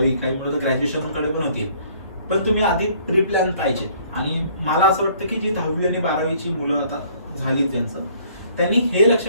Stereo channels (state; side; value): inverted; both; correlation -0.59